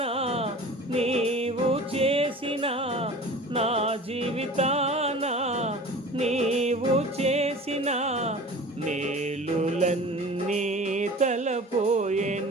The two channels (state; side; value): normal; both; correlation 0.40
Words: నీవు చేసిన, నా జీవితాన నీవు చేసిన మేలులన్నీ